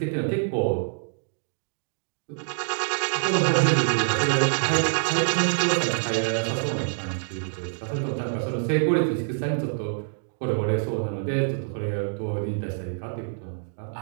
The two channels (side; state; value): left; silent; digital silence